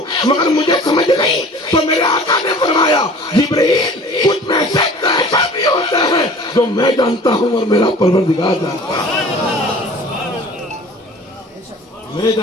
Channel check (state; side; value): normal; both; correlation 0.45